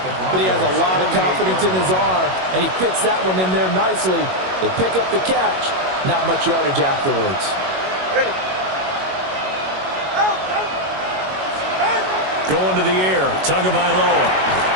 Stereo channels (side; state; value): left; late; 21 ms